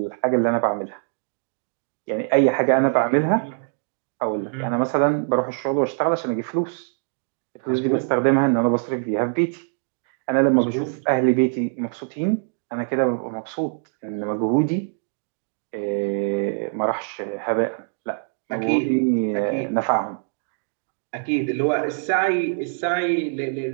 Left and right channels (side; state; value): left; silent; digital silence